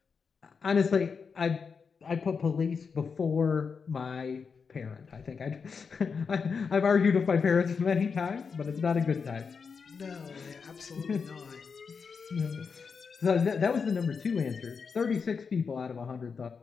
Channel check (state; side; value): quieter; right; 5.6 dB